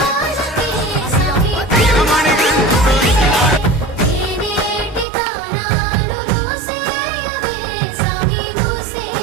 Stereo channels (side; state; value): left; drops out; at 5.1 s